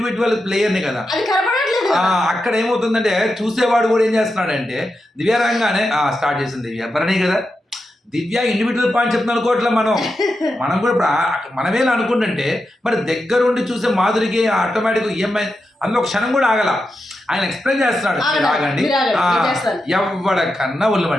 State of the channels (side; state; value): both; normal; correlation 0.88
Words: ప్లేయర్ని కదా. అక్కడ ఏమవుతుందంటే చూసేవాడు కూడా ఏం చేస్తున్నాడంటే దివ్య రంగానే స్టార్ట్ చేసింది దివ్య, భరణి కదా, దివ్య ఇండివిజువల్ పాయింట్ చెప్తున్నాను అనుకోవట్లే మనం కూడా ఇప్పుడు మనమేలా అనుకుంటుంటే మరి దగ్గరుండి చూసే మాధురికి ఆటోమేటిక్ ఈఎంఐ అందులో ఒక క్షణం కూడా ఆగల. ఆయన ఎక్స్ప్లెయిన్ చేస్తున్నాడు, ఆగండి ఎవడకన్నా ఒళ్ళు